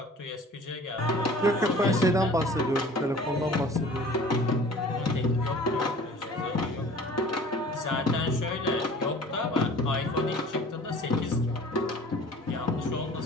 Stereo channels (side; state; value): both; normal; correlation 0.47